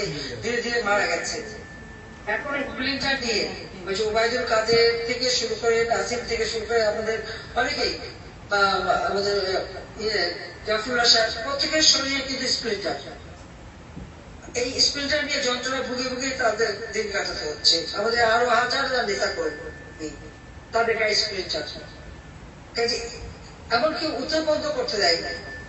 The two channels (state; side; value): identical; both; correlation 1.00